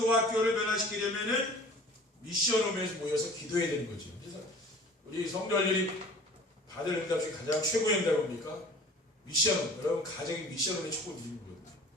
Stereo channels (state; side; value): normal; both; correlation 0.45